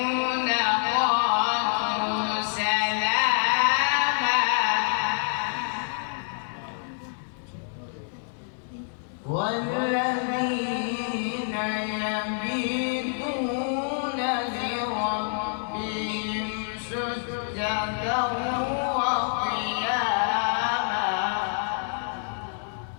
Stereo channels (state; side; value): silent; right; digital silence